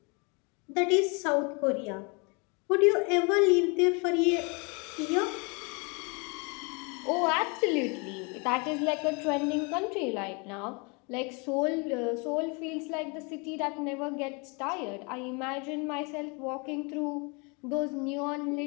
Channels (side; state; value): right; quieter; 31.8 dB